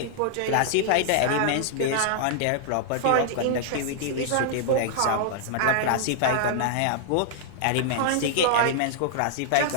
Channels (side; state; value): both; different; correlation -0.01